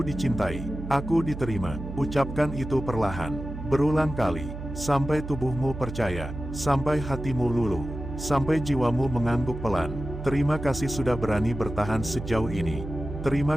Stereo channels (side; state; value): right; noise; hum, 9 dB below the sound